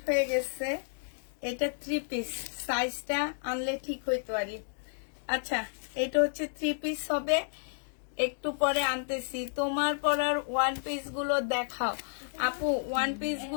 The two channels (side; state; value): right; silent; digital silence